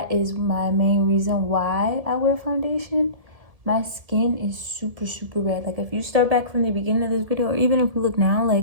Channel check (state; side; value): late; left; 1.7 ms